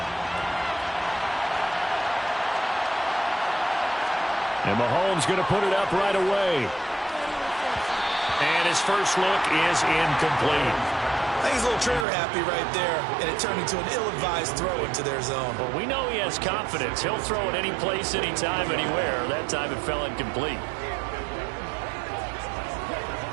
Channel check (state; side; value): drops out; left; at 12.1 s